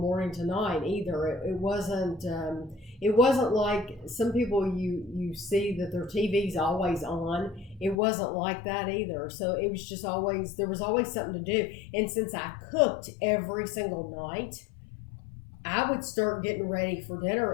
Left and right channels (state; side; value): drops out; right; at 8.0 s